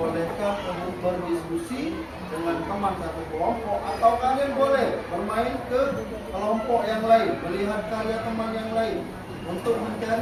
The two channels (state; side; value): identical; both; correlation 1.00